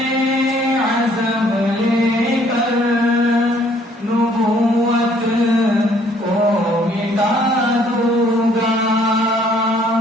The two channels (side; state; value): both; normal; correlation 0.62